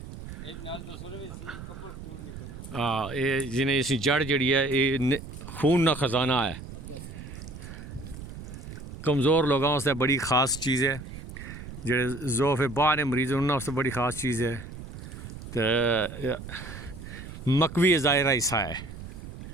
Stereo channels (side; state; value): right; noise; rumble, 12 dB below the sound